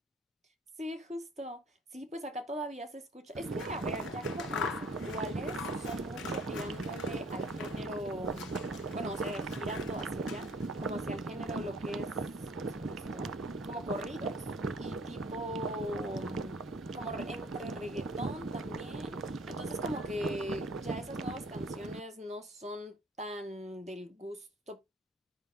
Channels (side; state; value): both; normal; correlation 0.54